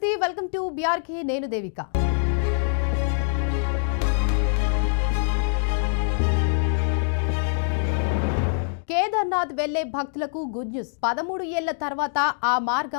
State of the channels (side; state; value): right; silent; digital silence